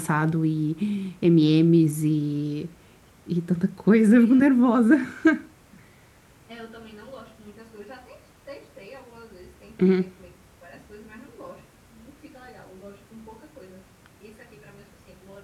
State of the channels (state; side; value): identical; both; correlation 1.00